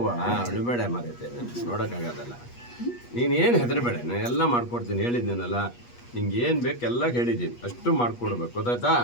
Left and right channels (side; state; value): right; late; 8.3 ms